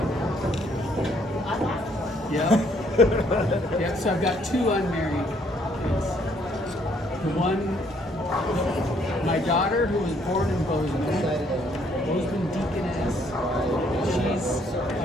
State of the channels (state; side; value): normal; both; correlation 0.66